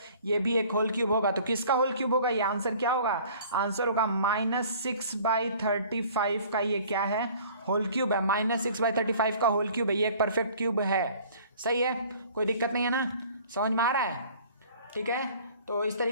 ये भी एक होल क्यूब होगा। तो किसका होल क्यूब होगा, ये आंसर क्या होगा, आंसर होगा -6/35 का, ये क्या है, होल क्यूब है, -6/35 का होल क्यूब है, ये एक परफेक्ट क्यूब है, सही है, कोई दिक्कत नहीं है ना, समझ में आ रहा है, ठीक है। तो इस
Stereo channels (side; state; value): both; inverted; correlation -0.51